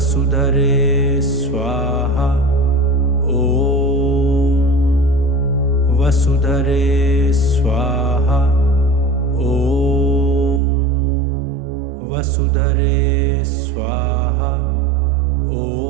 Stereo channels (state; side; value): drops out; left; at 10.6 s